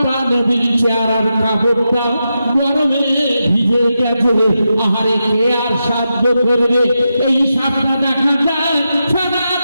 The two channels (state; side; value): inverted; both; correlation -0.87